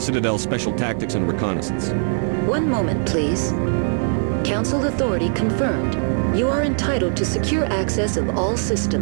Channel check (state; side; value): silent; left; 65 dB below the other